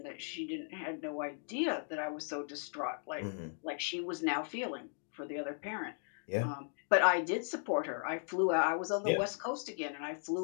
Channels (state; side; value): silent; right; 53 dB below the other